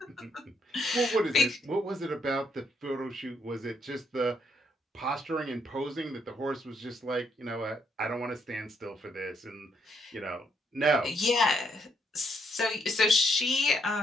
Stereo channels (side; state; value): both; normal; correlation 0.74